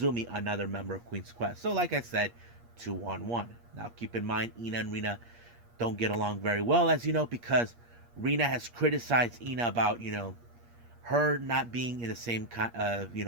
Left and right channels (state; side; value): late; left; 8.5 ms